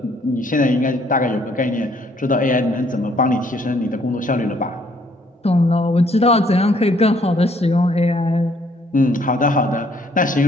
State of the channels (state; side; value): normal; both; correlation 0.65